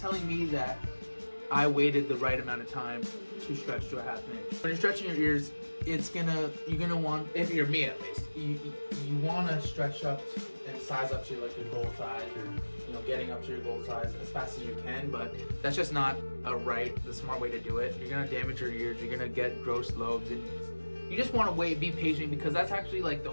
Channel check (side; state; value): both; inverted; correlation -1.00